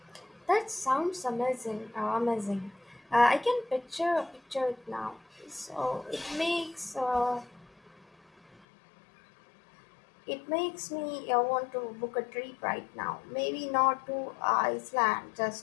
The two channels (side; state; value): right; drops out; at 8.6 s